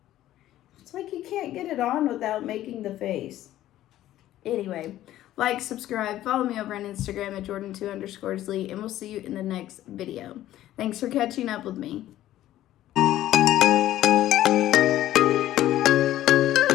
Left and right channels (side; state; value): right; quieter; 13.7 dB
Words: it's like you can't get it on without making the face. Anyway, like, subscribe, follow me over on Instagram at jordan2_lee, and we'll see you in the next video. Thanks for catching up with me.